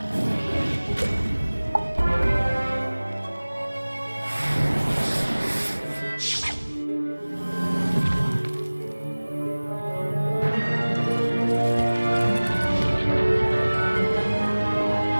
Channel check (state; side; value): inverted; both; correlation -1.00